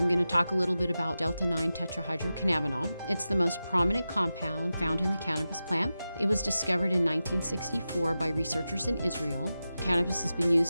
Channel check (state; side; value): inverted; both; correlation -0.93